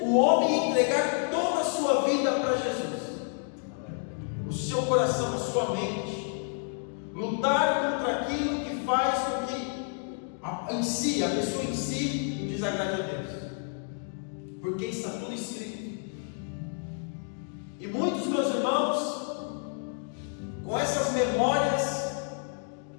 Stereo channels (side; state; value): right; silent; 55 dB below the other